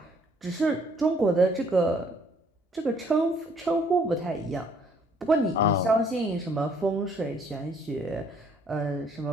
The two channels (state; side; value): normal; both; correlation 0.63